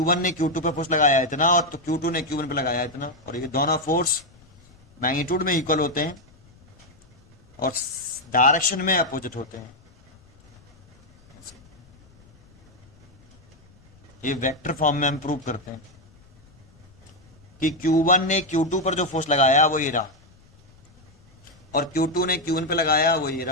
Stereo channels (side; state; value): left; noise; rumble, 29 dB below the sound